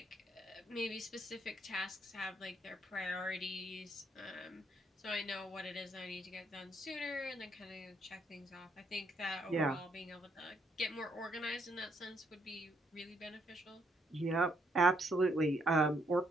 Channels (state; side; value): normal; both; correlation 0.72